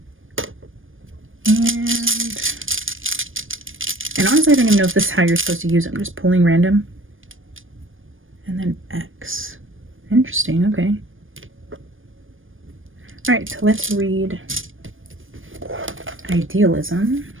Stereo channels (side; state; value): left; late; 0.59 ms